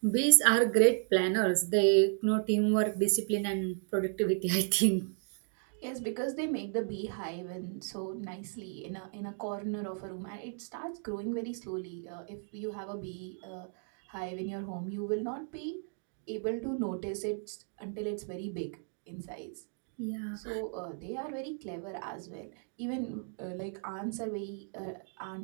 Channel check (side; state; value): left; silent; 55 dB below the other